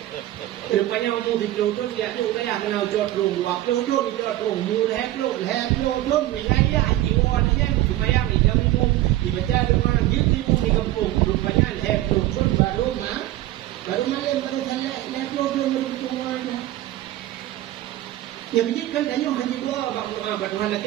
rupanya umum di pelutun dia tu dah kenal jod rum, waktu jod di jod rum, mula pelutun wilayah jiwa ni supaya macam umum dibaca dengan gitu di kampung, rupanya pelutun baru yang baru sana pelutun beruntungan. Yang menjadikan tanya haji gua Tuhan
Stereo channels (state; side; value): quieter; left; 15.1 dB